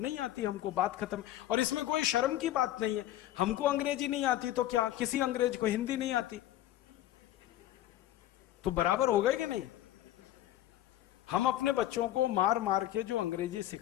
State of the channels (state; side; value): quieter; right; 13.7 dB